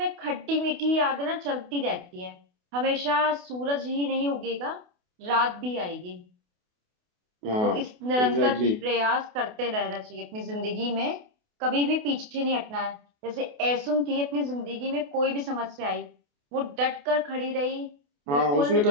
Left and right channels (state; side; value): late; left; 28 ms